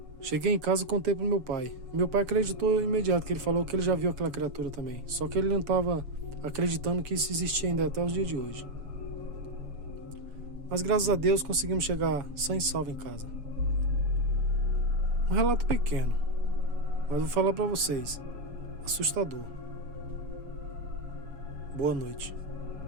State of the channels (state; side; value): late; left; 7.0 ms